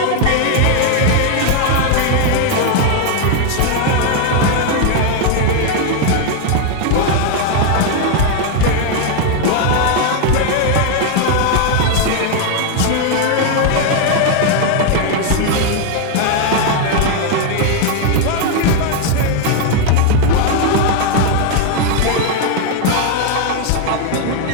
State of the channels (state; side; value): different; both; correlation 0.01